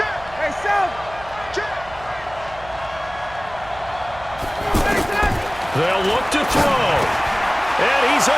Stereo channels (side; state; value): right; noise; hum, 18 dB below the sound